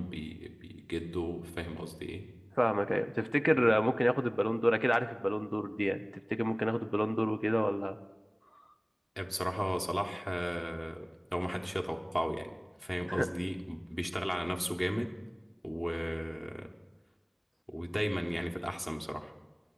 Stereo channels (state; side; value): identical; both; correlation 1.00